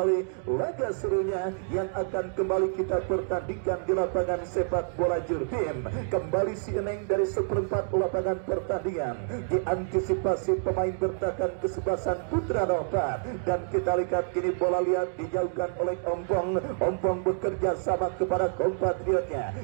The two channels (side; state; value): left; silent; digital silence